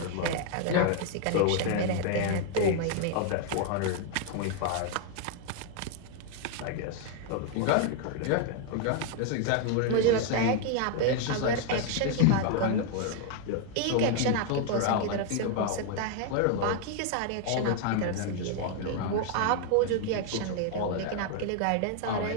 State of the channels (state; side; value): different; both; correlation 0.00